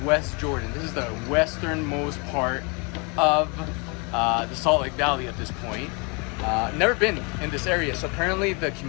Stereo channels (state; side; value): quieter; right; 31.4 dB